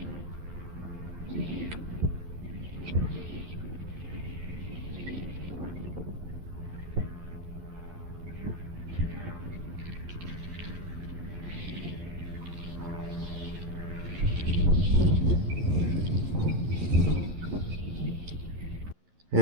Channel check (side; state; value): left; late; 11 ms